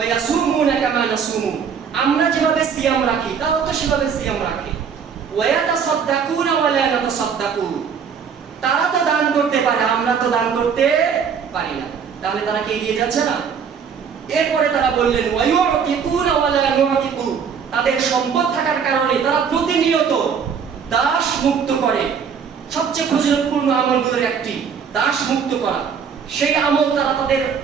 ইয়াসুমুনা কামা নাসুমু, আমরা যেভাবে সিয়াম রাখি, তারাও তো সেভাবে সিয়াম রাখে। ওয়া ইয়াতাসাদদাকুনা ওয়া লা নাতাসাদদাকু, তারা তো দান করতে পারে, আমরা তো দান করতে পারি না। তাহলে তারা কি এগিয়ে যাচ্ছে না? এরপরে তারা বললেন, ওয়া ইউতিকুনা ওয়া লা নুতিকু, তাদের সম্পদ থাকার কারণে তারা প্রতিনিয়ত দাস মুক্ত করে। সবচেয়ে ফজিলতপূর্ণ আমলগুলোর একটি দাস মুক্ত করা, সেই আমল তারা তাদের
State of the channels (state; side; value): quieter; left; 6.8 dB